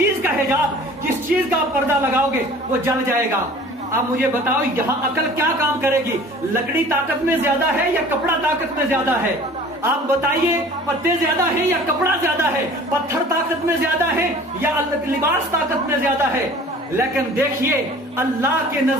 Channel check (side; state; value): both; normal; correlation 0.46